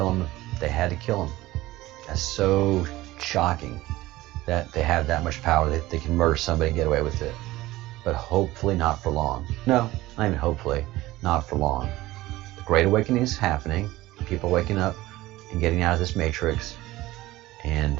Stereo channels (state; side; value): quieter; left; 17.6 dB